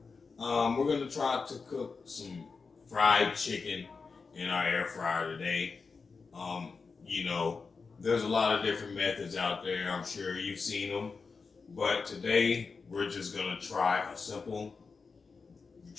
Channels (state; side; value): quieter; right; 4.8 dB